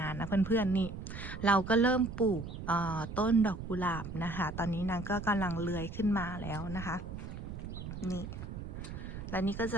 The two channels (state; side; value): noise; right; rumble, 8 dB below the sound